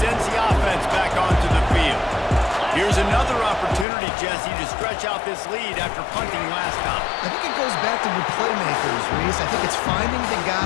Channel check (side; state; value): right; drops out; at 3.9 s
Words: sends the offense back onto the field. Here's another opportunity, Jesse, to stretch out this lead after punting last time. I think it goes back to the playmakers, Reese. I think it's finding the